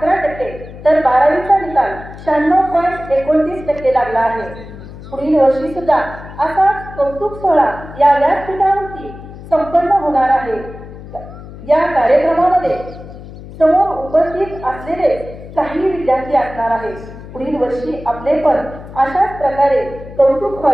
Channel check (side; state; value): left; noise; hum, 15 dB below the sound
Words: तर 12वीचा निकाल 96.29% लागला आहे। पुढील वर्षी सुद्धा असा कौतुक सोहळा या व्यासपीठावरती संपन्न होणार आहे। या कार्यक्रमामध्ये समोर उपस्थित असलेले काही विद्यार्थी असणार आहेत। पुढील वर्षी आपले पण अशाच प्रकारे कौतुक